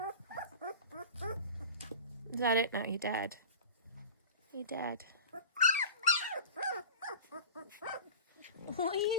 Is that it now? You're dead. You're dead. What are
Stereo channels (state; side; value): inverted; both; correlation -0.36